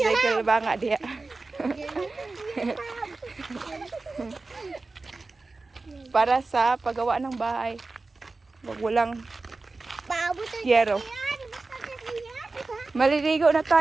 ba nga diya. Para sa paggawa ng bahay. Wag walang yero. Maliligo na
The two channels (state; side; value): quieter; left; 3.6 dB